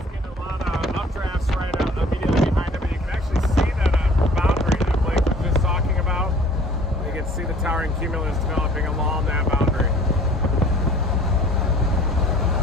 getting a lot of updrafts right out immediately behind him, and you can actually see that boundary that Blake was just talking about. You can see the towering cumulus developing along that boundary.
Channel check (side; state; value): both; normal; correlation 0.50